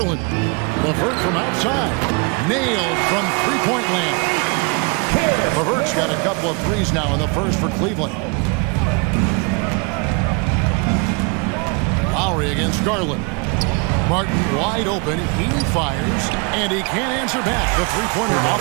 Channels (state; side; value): quieter; left; 32.1 dB